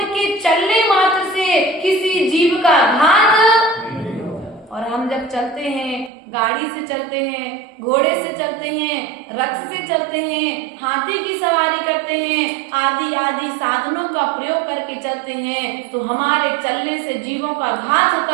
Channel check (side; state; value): left; drops out; at 6.1 s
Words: चलने मात्र से किसी जीव का घात। और हम जब चलते हैं, गाड़ी से चलते हैं, घोड़े से चलते हैं, रथ से चलते हैं, हाथी की सवारी करते हैं, आदि आदि साधनों का प्रयोग करके चलते हैं, तो हमारे चलने से जीवों का घात